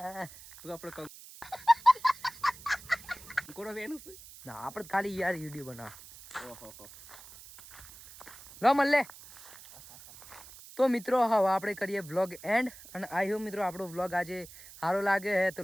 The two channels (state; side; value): noise; right; hiss, 18 dB below the sound